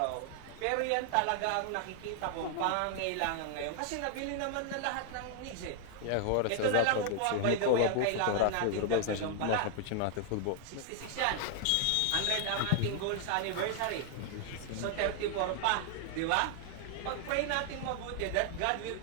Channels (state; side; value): different; both; correlation 0.00